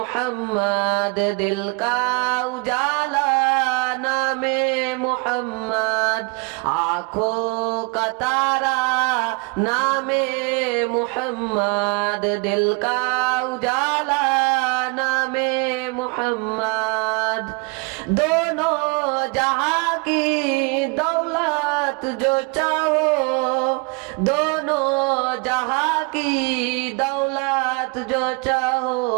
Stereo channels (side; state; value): left; quieter; 31.0 dB